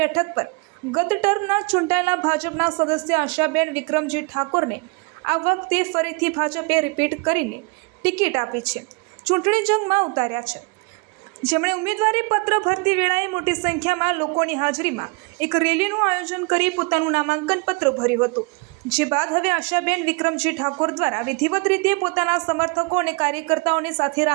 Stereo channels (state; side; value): quieter; left; 30.2 dB